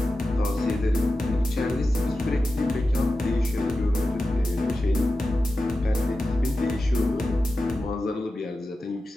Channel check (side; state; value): both; normal; correlation 0.93